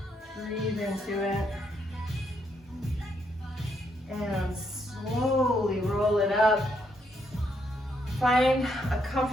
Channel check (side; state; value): both; normal; correlation 0.76